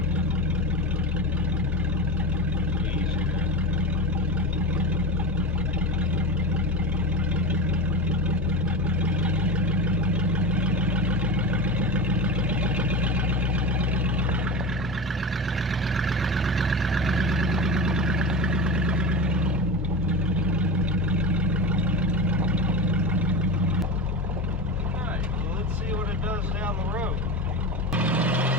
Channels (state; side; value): normal; both; correlation 0.24